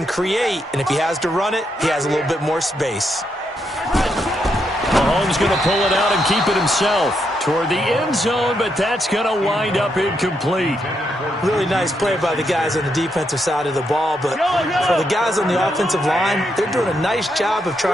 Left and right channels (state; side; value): normal; both; correlation 0.80